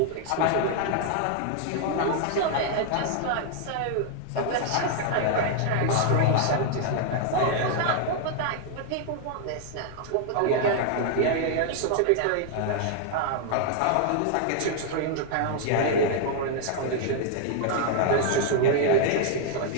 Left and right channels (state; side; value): different; both; correlation 0.00